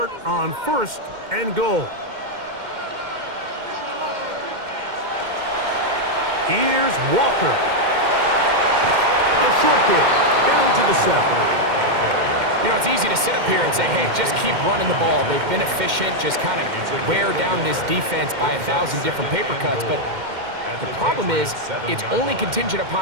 on first and goal. Here's Walker. A short kick down to the 7. You know, it's easy to sit up here and say, hey, just keep running the ball. They've been efficient, just kind of wear down this defense by 1,000 different paper cuts. But the problem is it's only contingent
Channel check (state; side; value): late; left; 2.1 ms